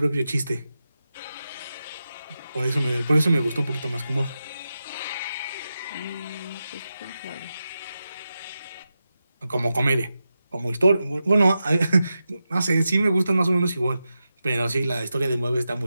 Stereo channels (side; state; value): both; inverted; correlation -0.90